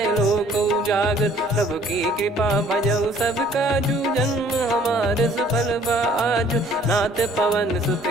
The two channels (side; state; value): both; normal; correlation 0.57